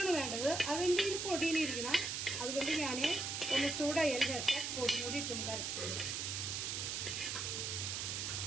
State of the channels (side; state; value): right; noise; hiss, 2 dB below the sound